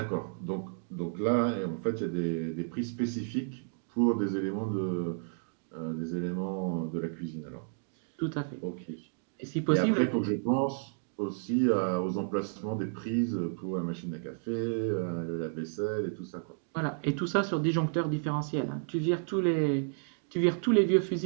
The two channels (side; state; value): left; silent; digital silence